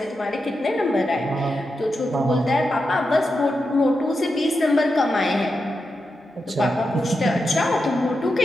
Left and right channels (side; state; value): both; normal; correlation 0.88